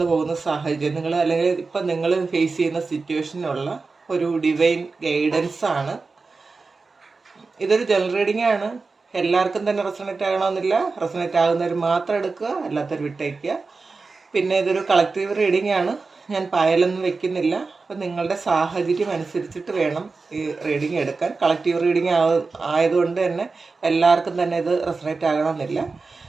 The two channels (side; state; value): left; quieter; 4.1 dB